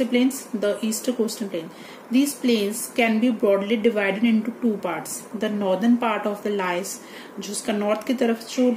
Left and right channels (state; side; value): identical; both; correlation 1.00